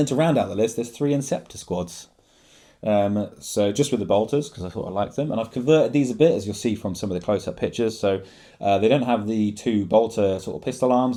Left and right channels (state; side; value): identical; both; correlation 1.00